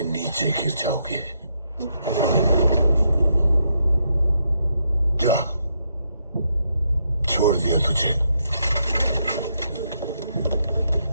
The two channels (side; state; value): both; inverted; correlation -0.78